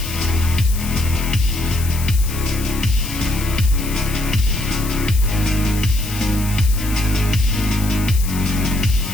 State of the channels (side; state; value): left; noise; hiss, 11 dB below the sound